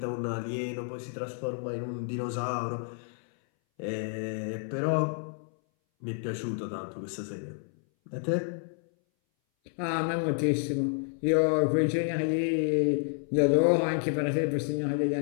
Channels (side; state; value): right; silent; 58 dB below the other